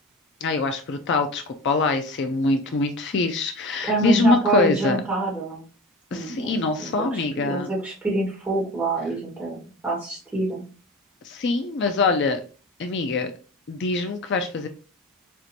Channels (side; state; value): both; normal; correlation 0.34